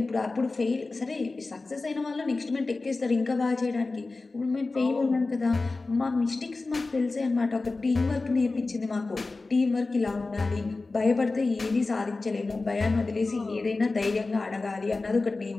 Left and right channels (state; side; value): quieter; right; 3.5 dB